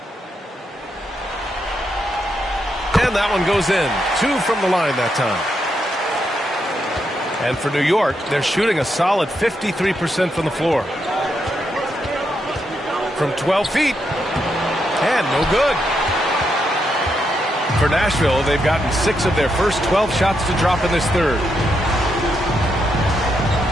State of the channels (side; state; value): both; normal; correlation 0.81